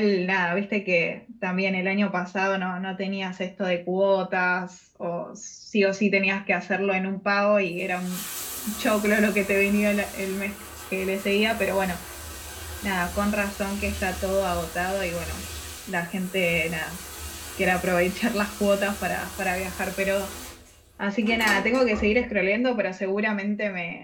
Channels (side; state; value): both; identical; correlation 1.00